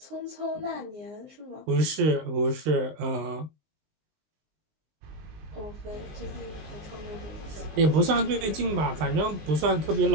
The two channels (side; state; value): left; late; 20 ms